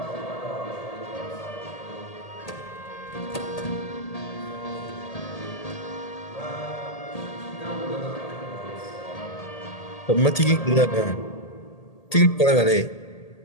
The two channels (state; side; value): late; right; 1.8 ms